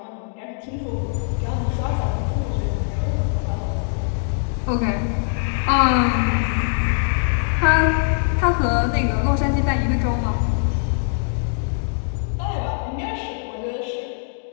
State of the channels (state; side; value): silent; right; digital silence